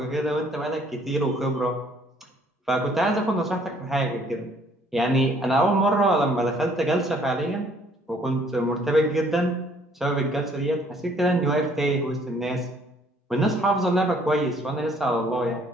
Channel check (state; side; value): normal; both; correlation 0.61